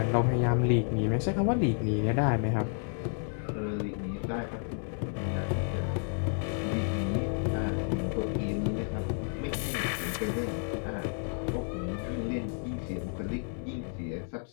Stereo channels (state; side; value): silent; right; 57 dB below the other